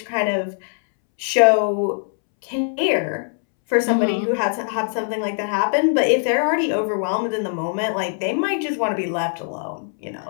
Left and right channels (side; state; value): right; silent; 65 dB below the other